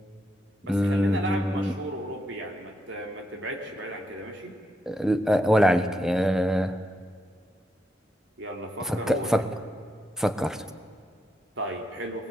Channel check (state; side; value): normal; both; correlation 0.81